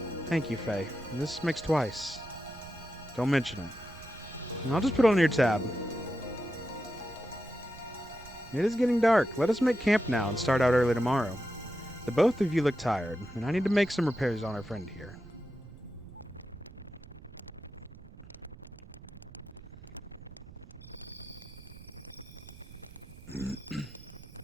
Thank you, Faye. This makes twice. Don't mention it. And I'll just put it on your tab. It is getting dark. Let us make camp now and start out early tomorrow. The both of you look tired, and I need to make some repairs on our friend here.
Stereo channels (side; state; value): right; noise; rumble, 18 dB below the sound